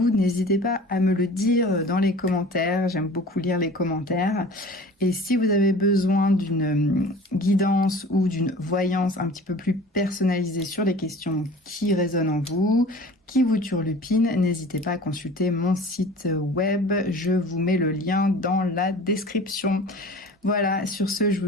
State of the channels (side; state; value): both; normal; correlation 0.42